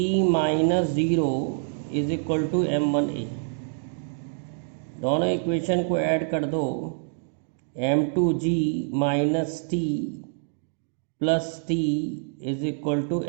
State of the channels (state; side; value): silent; left; digital silence